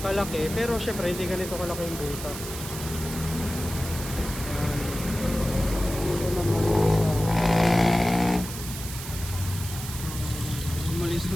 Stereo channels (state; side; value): noise; right; hiss, 9 dB below the sound